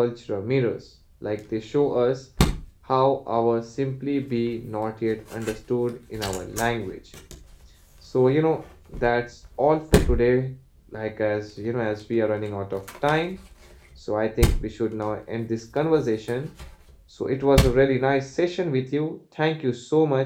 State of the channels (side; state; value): both; identical; correlation 1.00